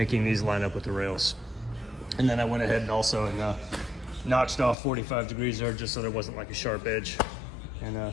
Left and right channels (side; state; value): right; drops out; at 4.8 s